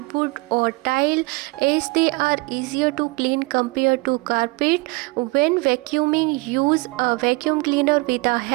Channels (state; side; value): quieter; left; 25.8 dB